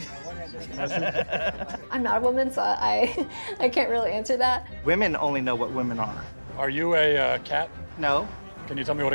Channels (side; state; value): both; inverted; correlation -1.00